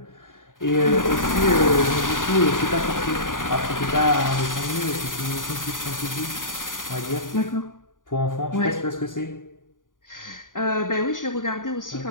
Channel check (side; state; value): right; late; 0.89 ms